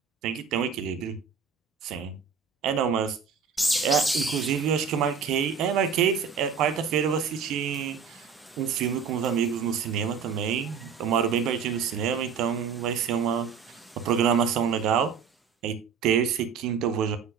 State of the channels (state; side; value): quieter; left; 6.4 dB